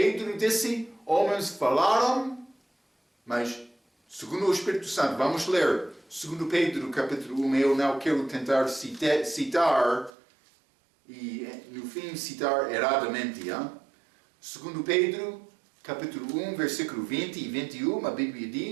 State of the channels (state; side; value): drops out; left; at 10.1 s